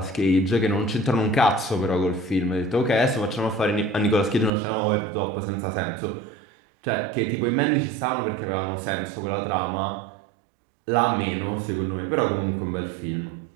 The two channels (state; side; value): drops out; left; at 4.5 s